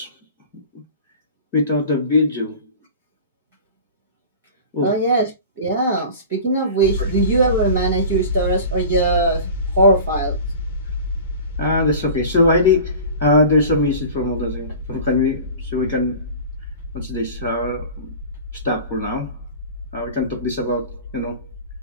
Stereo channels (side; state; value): both; inverted; correlation -0.38